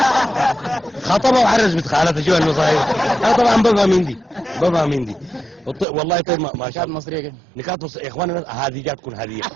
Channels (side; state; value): left; drops out; at 5.9 s